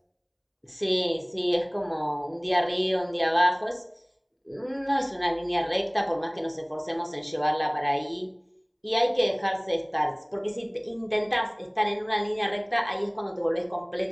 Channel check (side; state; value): both; identical; correlation 1.00